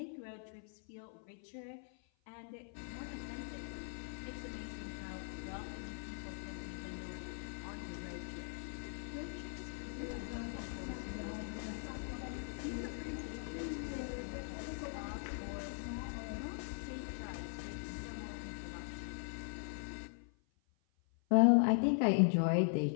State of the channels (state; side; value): silent; right; 51 dB below the other